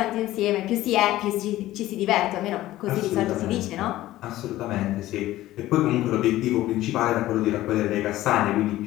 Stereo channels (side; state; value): right; quieter; 15.5 dB